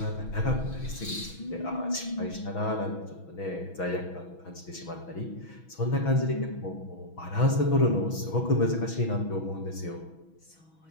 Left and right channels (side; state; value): right; late; 6.2 ms